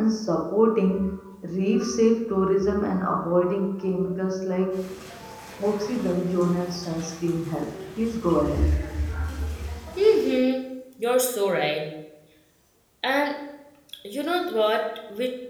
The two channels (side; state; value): both; identical; correlation 1.00